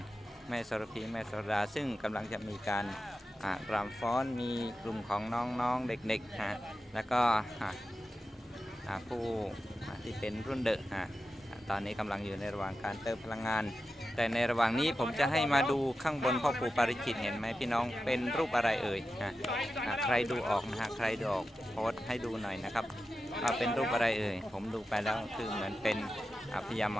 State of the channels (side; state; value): both; normal; correlation 0.92